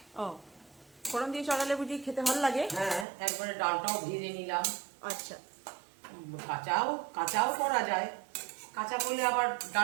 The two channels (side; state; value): left; drops out; at 3.1 s